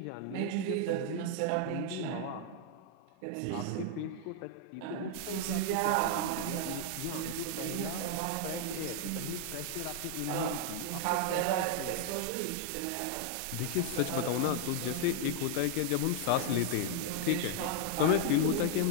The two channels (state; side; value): different; both; correlation 0.00